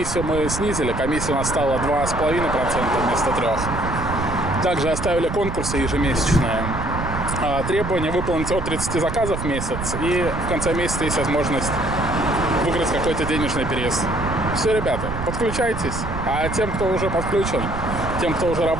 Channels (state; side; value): noise; right; rumble, 5 dB below the sound